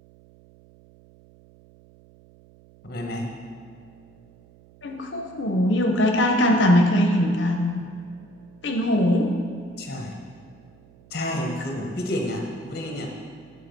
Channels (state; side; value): noise; right; hum, 26 dB below the sound